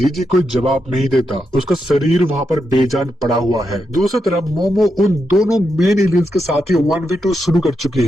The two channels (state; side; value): normal; both; correlation 0.85